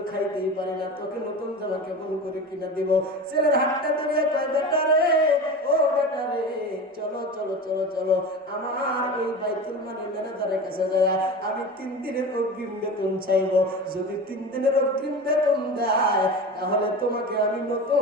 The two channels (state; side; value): normal; both; correlation 0.30